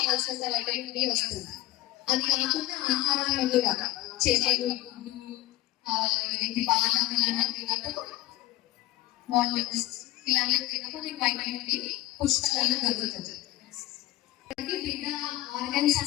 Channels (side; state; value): right; quieter; 16.6 dB